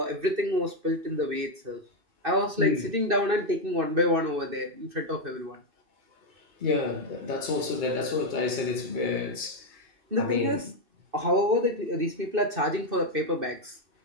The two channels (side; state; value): left; late; 2.6 ms